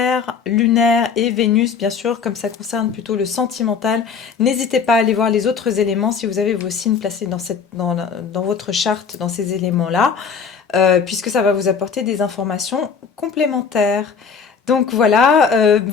lunaires et Vénus, bien sûr, comme ça concerne plutôt le sentimental. N'hésitez pas à aller voir les autres éléments si vous avez vos signes placés dans votre charte, dans ces éléments-là. Puisque ça va vous apporter des informations complémentaires. Donc voilà,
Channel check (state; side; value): quieter; right; 6.0 dB